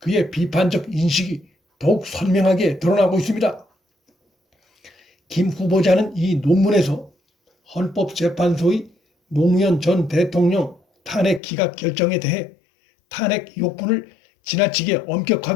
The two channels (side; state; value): right; drops out; at 11.4 s